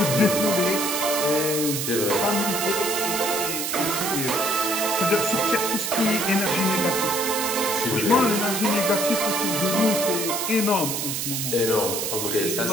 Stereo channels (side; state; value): right; noise; hiss, 2 dB below the sound